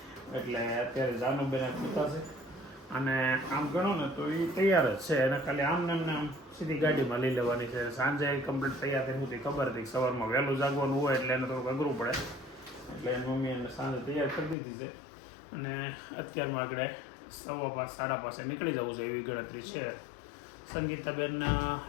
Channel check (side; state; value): right; drops out; at 14.6 s